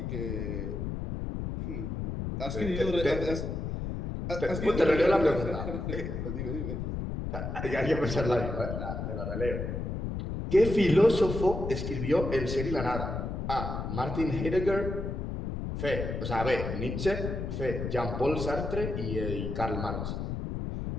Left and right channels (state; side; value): noise; left; rumble, 4 dB below the sound